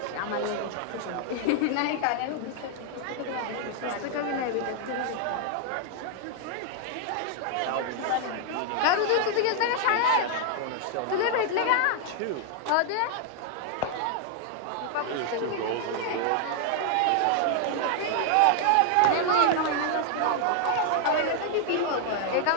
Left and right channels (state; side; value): different; both; correlation 0.00